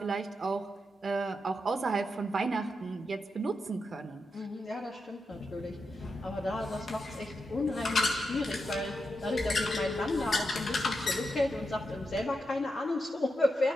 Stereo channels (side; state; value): both; normal; correlation 0.86